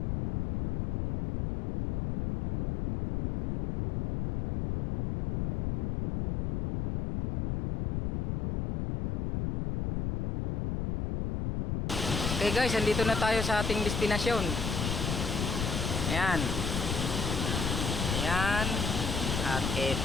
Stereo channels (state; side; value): noise; left; rumble, 2 dB below the sound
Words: Okay guys, andito na tayo sa ating destinasyon. Ayan. Ayan. At